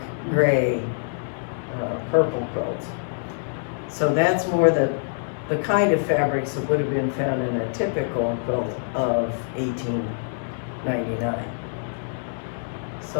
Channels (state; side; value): silent; right; digital silence